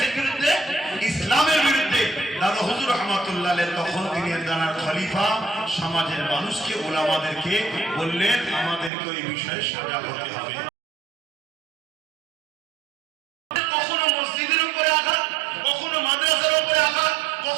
বিরুদ্ধে? ইসলামের বিরুদ্ধে। দাদা হুজুর রহমাতুল্লাহ আলাইহি তখন তিনি দানার খলিফা সমাজের মানুষকে, ওলামাদেরকে বললেন, আমাদেরকে ওই বিষয়ে সজাগ হতে হবে। কখনো মসজিদের উপরে আঘাত, কখনো মাদ্রাসার উপরে আঘাত,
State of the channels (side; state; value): left; drops out; at 8.9 s